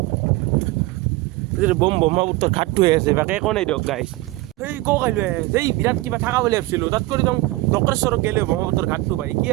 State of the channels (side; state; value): left; quieter; 19.4 dB